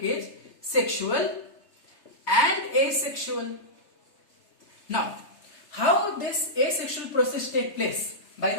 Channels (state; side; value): late; right; 3.3 ms